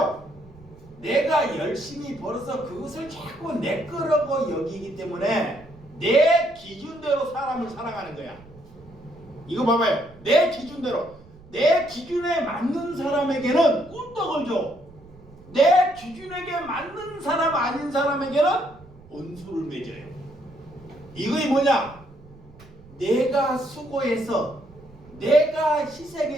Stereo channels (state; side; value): noise; right; rumble, 23 dB below the sound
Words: 내가 열심히 벌어서 그것을 자꾸 내 거라고 여기기 때문에 내 기준대로 사람을 살아가는 거야. 이거 봐봐요. 내 기준대로, 내 기준에 맞는 사람에게는 꿀떡을 줘. 내 기준에게 맞는 사람 아닌 사람에게는 원수를 맺어요. 이거이 뭐냐? 내가 수고해서 내가